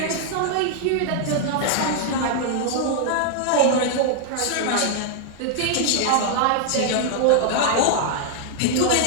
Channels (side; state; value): both; different; correlation -0.01